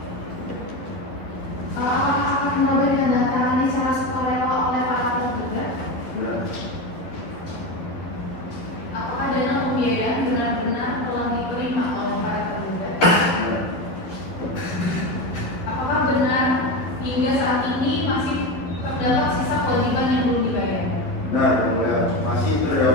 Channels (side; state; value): right; late; 11 ms